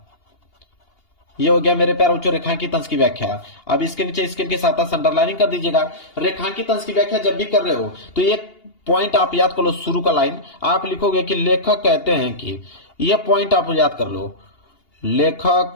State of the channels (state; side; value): late; right; 2.8 ms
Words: ये हो गया मेरे प्यारे बच्चों रेखांकित अंश की व्याख्या। अब इसके नीचे स्केल के साथ अंडरलाइनिंग कर दीजिएगा। रेखांकित अंश की व्याख्या जब भी कर रहे हो तो एक पॉइंट आप याद कर लो, शुरू का लाइन आप लिखोगे कि लेखक कहते हैं कि, ये पॉइंट आप याद कर लो,